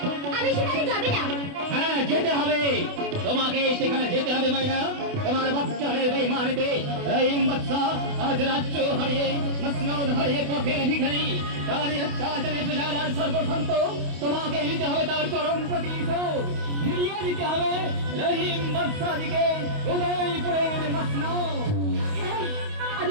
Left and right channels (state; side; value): late; left; 28 ms